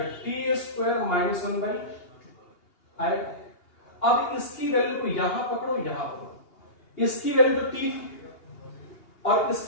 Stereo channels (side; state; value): right; late; 2.8 ms